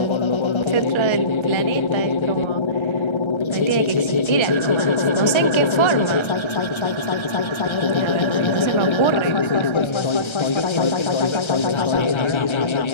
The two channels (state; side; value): late; right; 1.3 ms